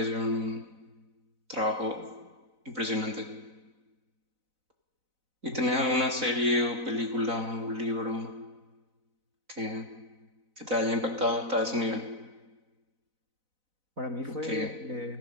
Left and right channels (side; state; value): left; late; 4.0 ms